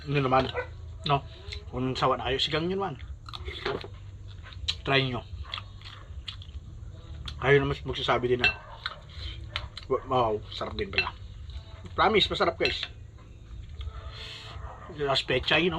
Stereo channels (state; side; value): identical; both; correlation 1.00